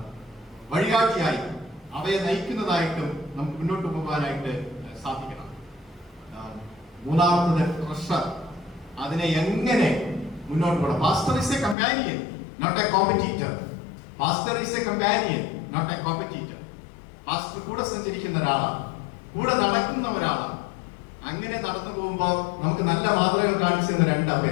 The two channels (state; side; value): drops out; right; at 11.8 s